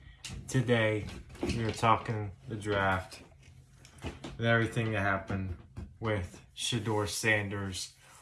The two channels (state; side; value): identical; both; correlation 1.00